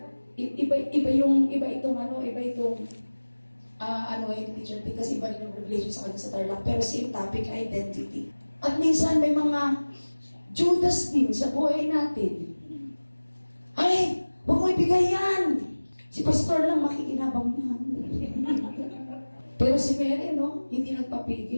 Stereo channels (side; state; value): both; inverted; correlation -1.00